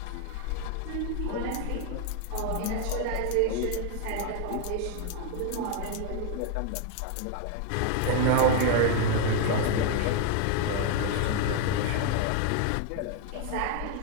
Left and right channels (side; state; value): both; different; correlation 0.01